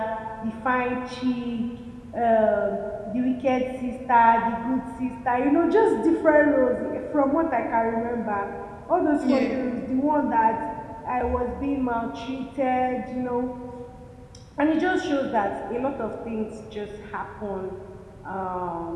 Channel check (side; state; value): both; identical; correlation 1.00